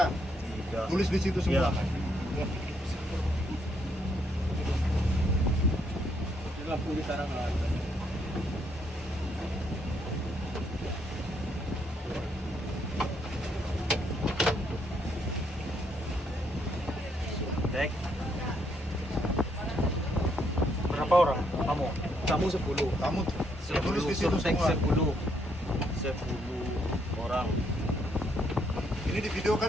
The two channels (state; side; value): normal; both; correlation 0.73